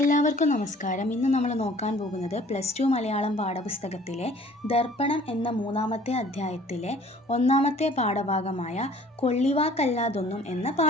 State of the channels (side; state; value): both; normal; correlation 0.53